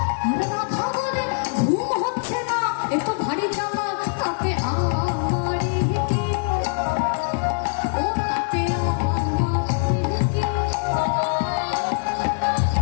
আর রাধা বলে ঘুম হচ্ছে না, এ তো ভারী জ্বালা, তাতে আমারই কি, ও তাতে আমারই কি।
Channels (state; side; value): silent; right; 63 dB below the other